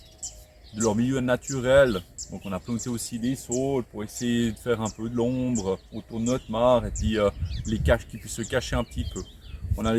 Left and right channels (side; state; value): both; identical; correlation 1.00